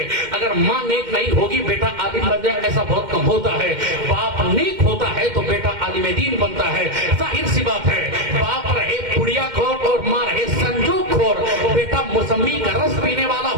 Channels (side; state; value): left; late; 2.1 ms